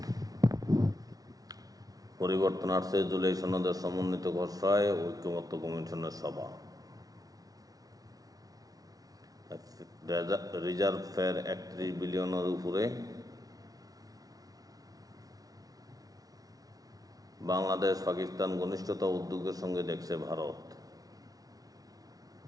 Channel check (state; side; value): late; left; 0.18 ms